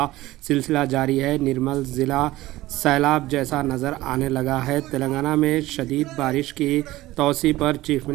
सिलसिला जारी है। निर्मल ज़िला सैलाब जैसा नज़र आने लगा है। तेलंगाना में शदीद बारिश की तौसी पर चीफ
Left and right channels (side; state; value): left; quieter; 17.3 dB